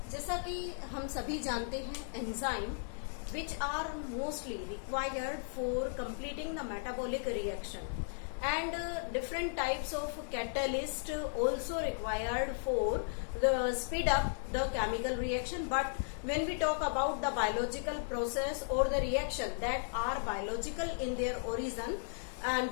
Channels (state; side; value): silent; right; 54 dB below the other